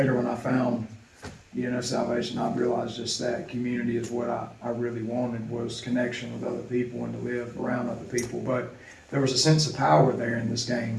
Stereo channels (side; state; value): both; identical; correlation 1.00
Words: when I found, you know, salvation, I realized just that community is what I really wanted, was connection with other people and to live around other people. But there was a sense of power there in this game.